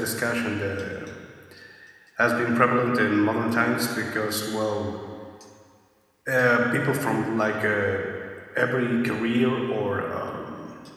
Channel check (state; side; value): identical; both; correlation 1.00